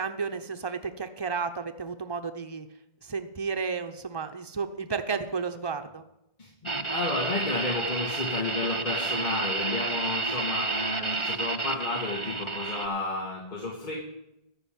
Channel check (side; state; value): right; late; 1.2 ms